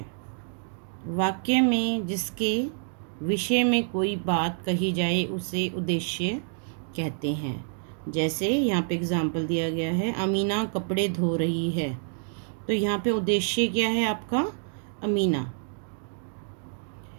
वाक्य में जिसके विषय में कोई बात कही जाए उसे उद्देश्य कहते हैं। जैसे यहाँ पे एग्जाम्पल दिया गया है, अमीना कपड़े धो रही है, तो यहाँ पे उद्देश्य क्या है आपका, अमीना।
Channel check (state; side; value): silent; left; 60 dB below the other